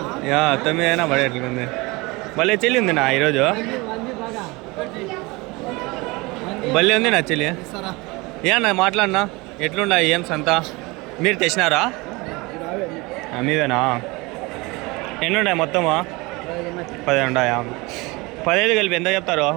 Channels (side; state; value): left; quieter; 24.4 dB